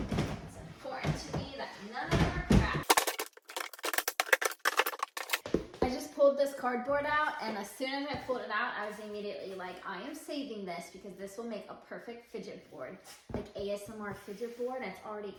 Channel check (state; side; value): identical; both; correlation 1.00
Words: It's important to me that none of them are cracked. I just pulled this cardboard out, and as soon as I pulled it out, I was immediately like, I am saving this because this will make a perfect fidget board, like ASMR fidget board, and it's already